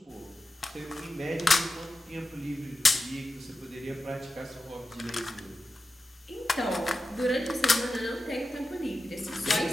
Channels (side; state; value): both; normal; correlation 0.91